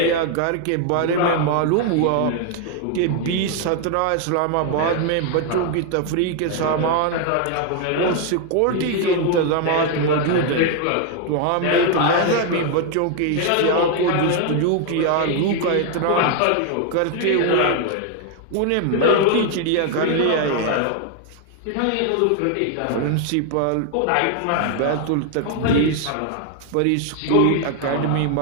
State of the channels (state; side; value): different; both; correlation 0.00